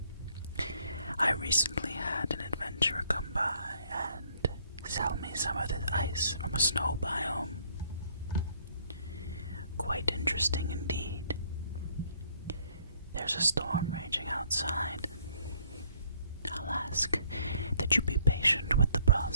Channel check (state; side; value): inverted; both; correlation -0.64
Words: I recently had an adventurer come by and sell me some of this ice from a snow biome. Quite interesting indeed. There's a storm raging outside. I'll ask that you be patient with the